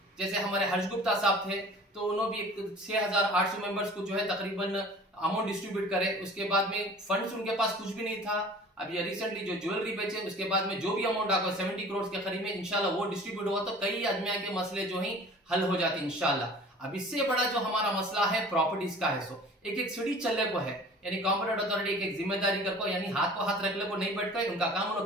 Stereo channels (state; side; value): normal; both; correlation 0.45